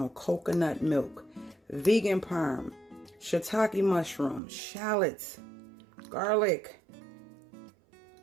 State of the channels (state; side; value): drops out; left; at 4.4 s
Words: Coconut milk, vegan parm, shiitake mushrooms, shallots, Garlic.